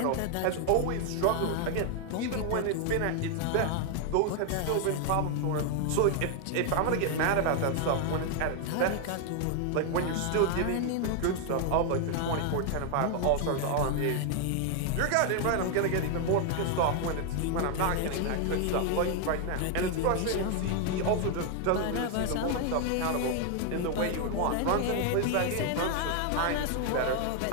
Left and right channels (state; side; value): different; both; correlation 0.00